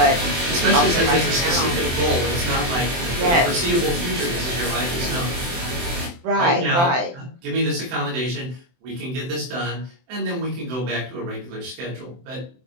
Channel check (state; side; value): late; left; 23 ms